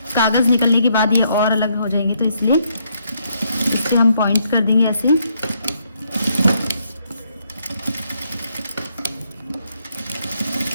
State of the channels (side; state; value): both; inverted; correlation -0.74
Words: कागज़ निकलने के बाद ये और अलग हो जाएंगे, तो इसलिए इस पर हम पॉइंट कर देंगे ऐसे।